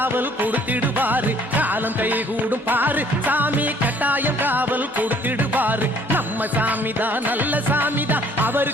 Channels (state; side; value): normal; both; correlation 0.59